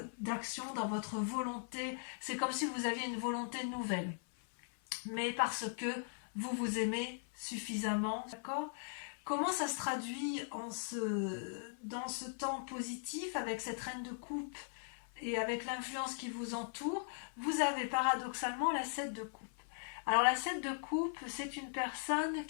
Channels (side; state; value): right; silent; 52 dB below the other